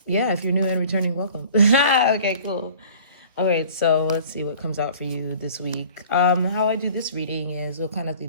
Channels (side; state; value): both; inverted; correlation -0.48